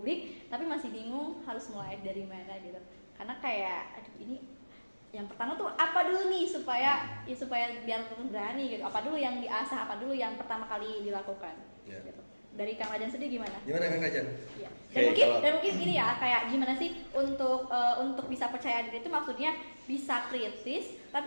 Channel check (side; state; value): both; inverted; correlation -1.00